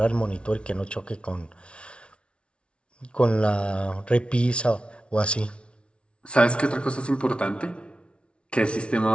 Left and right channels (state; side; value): late; right; 0.059 ms